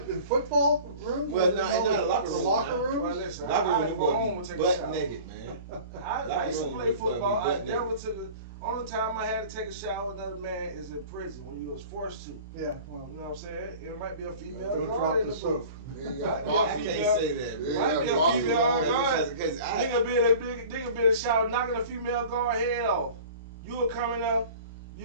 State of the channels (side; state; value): both; inverted; correlation -0.42